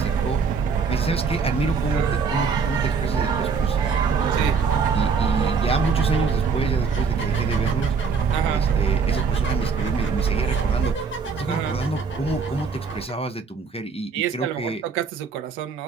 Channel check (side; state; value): left; quieter; 5.4 dB